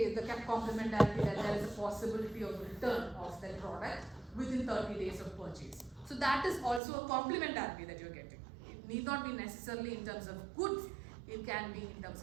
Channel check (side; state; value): left; drops out; at 6.8 s